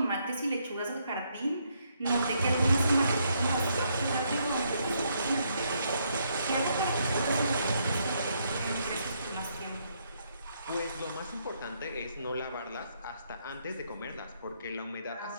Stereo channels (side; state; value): both; inverted; correlation -0.74